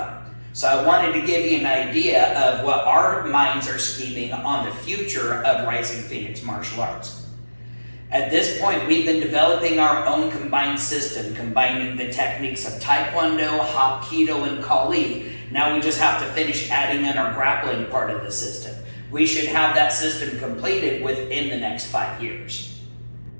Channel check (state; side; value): inverted; both; correlation -1.00